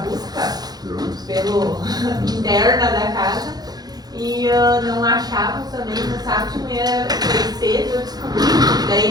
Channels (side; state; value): left; late; 0.19 ms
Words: pelo interna da casa e não achávamos também, no sábado de manhã foi cedo, eu descobri, daí